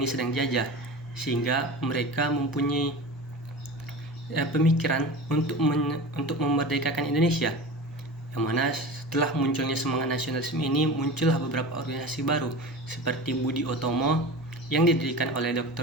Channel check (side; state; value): both; normal; correlation 0.32